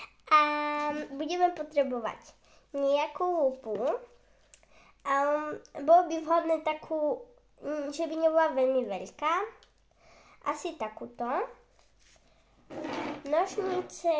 a budeme potrebovať nejakú lupu. Bolo by vhodné takú, že by nebola veľmi veľká, asi takúto. Nožnice,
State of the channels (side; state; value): both; identical; correlation 1.00